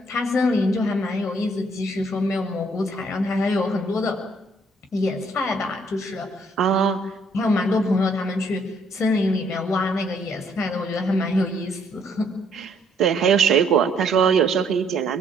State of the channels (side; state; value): both; normal; correlation 0.66